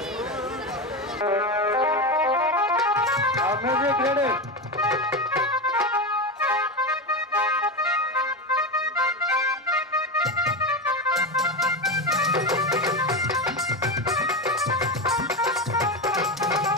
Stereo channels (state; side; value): normal; both; correlation 0.17